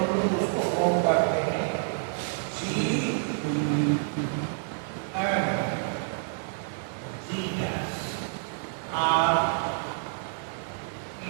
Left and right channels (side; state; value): left; silent; digital silence